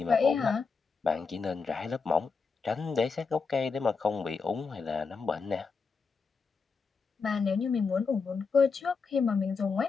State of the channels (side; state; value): right; quieter; 4.9 dB